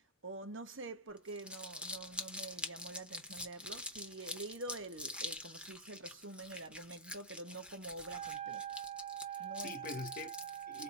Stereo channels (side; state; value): both; normal; correlation -0.12